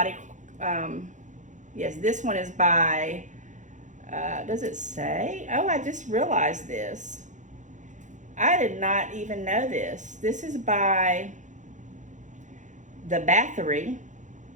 yes, this one is by, does it say? Oh, I just realized this. I did not even know this. This is by the Battery,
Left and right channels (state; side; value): late; left; 0.36 ms